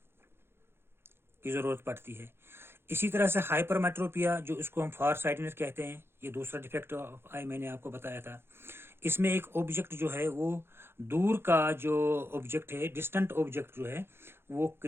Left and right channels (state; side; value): late; left; 0.11 ms